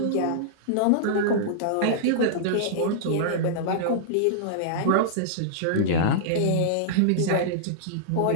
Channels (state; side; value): different; both; correlation -0.02